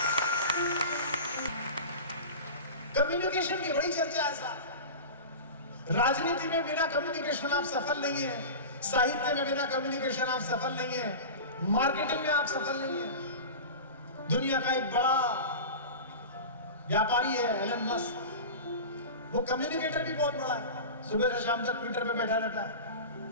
कम्युनिकेशन की बड़ी चर्चा है साहब। राजनीति में बिना कम्युनिकेशन आप सफल नहीं है, साहित्य में बिना कम्युनिकेशन आप सफल नहीं है, मार्केटिंग में आप सफल नहीं है। दुनिया का एक बड़ा व्यापारी है एलन मस्क, वो कम्युनिकेटर भी बहुत बड़ा है। सुबह से शाम तक ट्विटर पे बैठा रहता है।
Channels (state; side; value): inverted; both; correlation -0.30